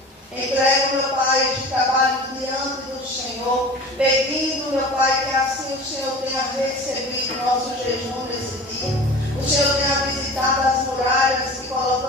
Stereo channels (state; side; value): normal; both; correlation 0.38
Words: Entrego, meu Pai, este trabalho diante do Senhor, pedindo, meu Pai, que assim o Senhor tenha recebido nosso jejum nesse dia. O Senhor tenha visitado as muralhas que